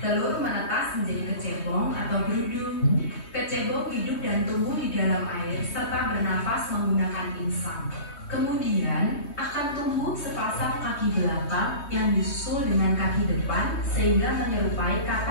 Telur menetas menjadi kecebong atau berudu. Kecebong hidup dan tumbuh di dalam air serta bernafas menggunakan insang. Kemudian akan tumbuh sepasang kaki belakang yang disusul dengan kaki depan sehingga menyerupai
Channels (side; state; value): right; late; 3.2 ms